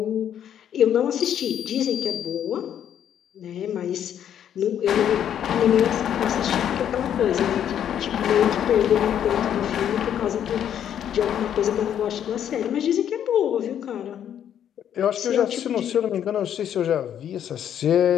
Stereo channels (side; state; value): right; quieter; 9.7 dB